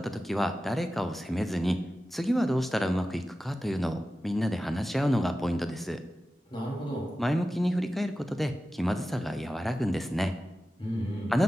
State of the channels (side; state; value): both; normal; correlation 0.94